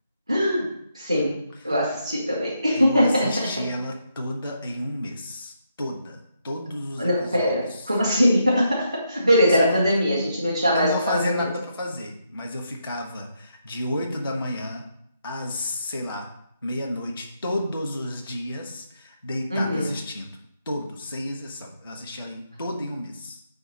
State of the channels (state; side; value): inverted; both; correlation -0.79